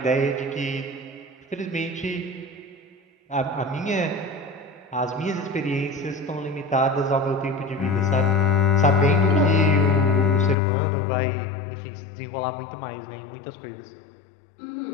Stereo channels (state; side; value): drops out; right; at 10.6 s